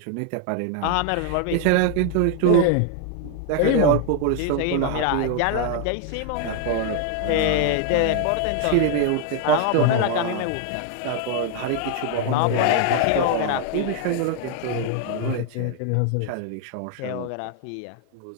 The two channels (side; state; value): both; different; correlation 0.00